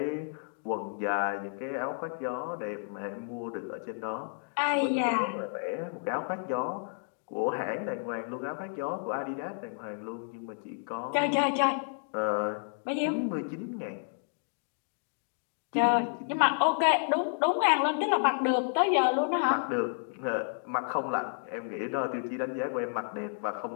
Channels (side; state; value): right; silent; digital silence